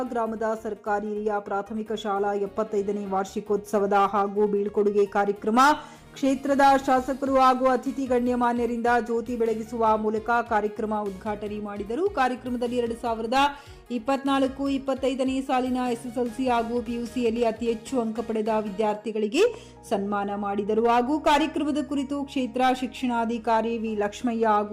ಗ್ರಾಮದ ಸರ್ಕಾರಿ ಹಿರಿಯ ಪ್ರಾಥಮಿಕ ಶಾಲಾ 75ನೇ ವಾರ್ಷಿಕೋತ್ಸವದ ಹಾಗೂ ಬೀಳ್ಕೊಡುಗೆ ಕಾರ್ಯಕ್ರಮ ಕ್ಷೇತ್ರದ ಶಾಸಕರು ಹಾಗೂ ಅತಿಥಿ ಗಣ್ಯಮಾನ್ಯರಿಂದ ಜ್ಯೋತಿ ಬೆಳಗಿಸುವ ಮೂಲಕ ಕಾರ್ಯಕ್ರಮ ಉದ್ಘಾಟನೆ ಮಾಡಿದರು. ಕಾರ್ಯಕ್ರಮದಲ್ಲಿ 2024-25ನೇ ಸಾಲಿನ ಎಸ್ಎಸ್ಎಲ್ಸಿ ಹಾಗೂ ಪಿಯುಸಿಯಲ್ಲಿ ಅತಿ ಹೆಚ್ಚು ಅಂಕ ಪಡೆದ ವಿದ್ಯಾರ್ಥಿಗಳಿಗೆ ಸನ್ಮಾನ ಮಾಡಿದರು. ಹಾಗೂ ಕಾರ್ಯಕ್ರಮದ ಕುರಿತು ಕ್ಷೇತ್ರ ಶಿಕ್ಷಣಾಧಿಕಾರಿ ವಿ ಲಕ್ಷ್ಮಯ್ಯ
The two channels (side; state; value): both; identical; correlation 1.00